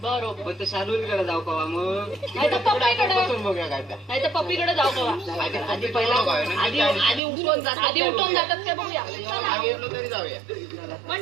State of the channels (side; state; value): left; drops out; at 7.2 s